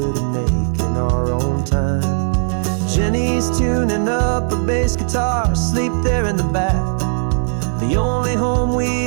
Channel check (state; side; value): silent; left; 68 dB below the other